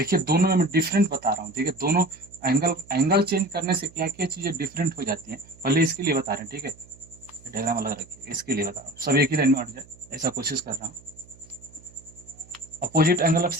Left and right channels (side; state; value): right; noise; hum, 24 dB below the sound